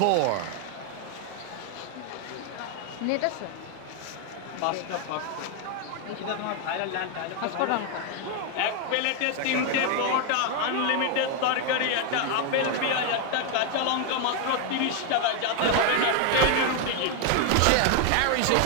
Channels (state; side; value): different; both; correlation 0.00